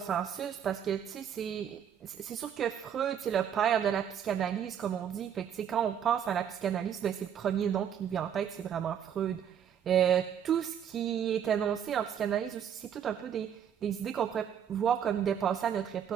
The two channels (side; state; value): left; quieter; 8.9 dB